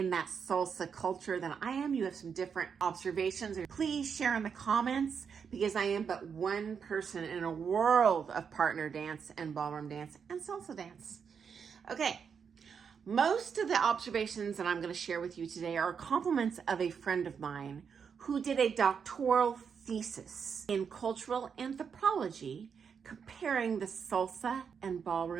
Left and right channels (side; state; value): left; quieter; 6.6 dB